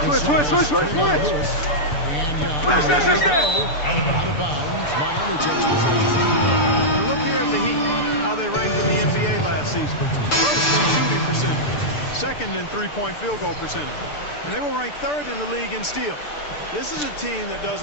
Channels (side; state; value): right; late; 6.8 ms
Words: Switch. And Young. Out of bounds. Miami takes possession. And look here at the Heat, how they ranked in the NBA last season. First in shooting percentage, second in three-point field goal percentage. And they were ranked third in the league in steals. This is a team that does